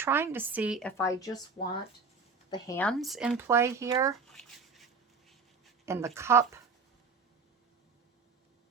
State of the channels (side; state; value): left; quieter; 4.7 dB